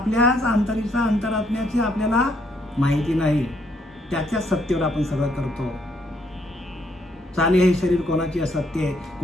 अंतरात्म्याची आपल्याला माहिती नाही, त्याच्या सत्तेवर आपण सगळं करतो. चाले हे शरीर कोणाची असत्य आहे,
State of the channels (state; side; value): normal; both; correlation 0.71